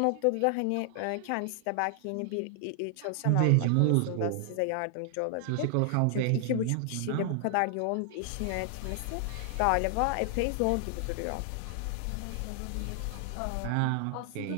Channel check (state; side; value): different; both; correlation 0.00